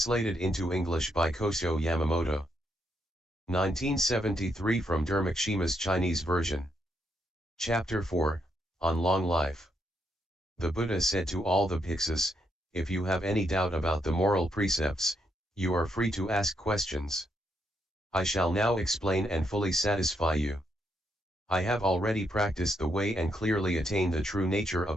into English by Kosho Yamamoto. 1973 from Dharmakshema's Chinese version. Chapter 4, On Long Life. The Buddha said to all the Bhiksus, if you have any doubt about the moral precepts, you are free to ask questions. I shall now explain and fully satisfy you. I have already practiced the way and clearly attained the true nature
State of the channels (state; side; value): normal; both; correlation 0.78